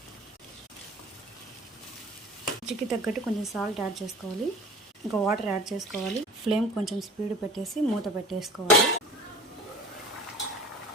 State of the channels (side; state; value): both; normal; correlation 0.41